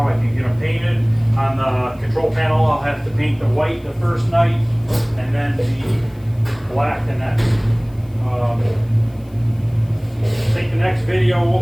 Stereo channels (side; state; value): left; noise; hiss, 30 dB below the sound